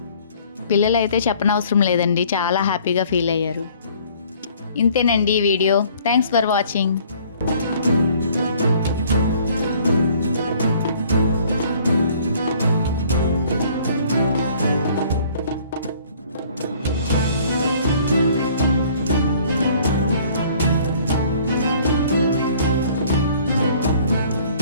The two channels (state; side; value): inverted; both; correlation -0.56